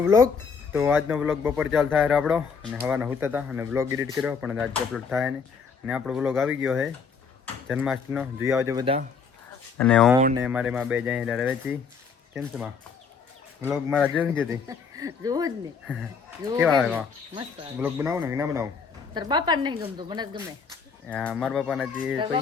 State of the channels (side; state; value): right; quieter; 5.7 dB